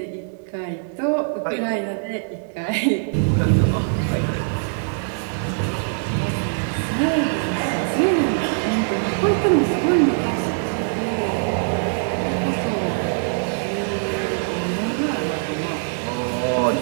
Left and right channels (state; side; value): silent; left; digital silence